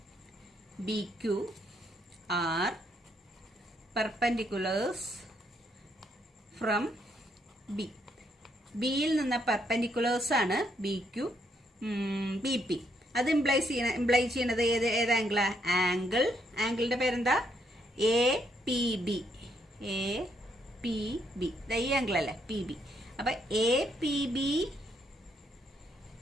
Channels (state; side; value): normal; both; correlation 0.74